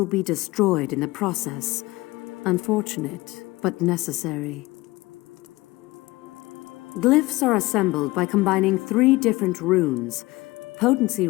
be destroyed in the process. Unfortunate, but necessary. Glyphs are assembled by combining 3 different runes. Potency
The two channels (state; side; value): quieter; right; 20.6 dB